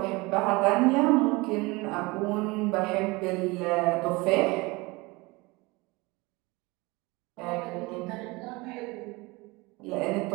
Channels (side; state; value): left; quieter; 24.0 dB